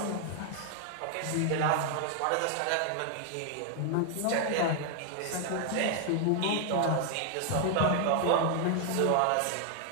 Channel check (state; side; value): different; both; correlation 0.00